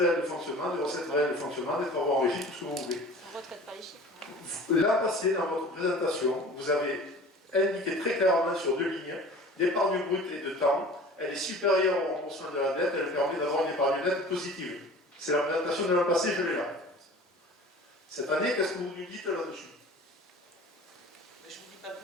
de fonctionnement, des recettes réelles de fonctionnement, des travaux en régie, tout ce que vous voulez. On retraite pas les chiffres. L'an passé, dans votre présentation, vous avez indiqué très clairement sur 2 lignes d'épargne brute et de temps. Elle est supérieure au remboursement de la dette, elle permet d'avoir une épargne nette positive. C'est la présentation de l'an passé, je l'ai là. Cette année, qu'est-ce que vous nous dites là-dessus? Mais je ne vous dis pas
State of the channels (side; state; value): both; normal; correlation 0.42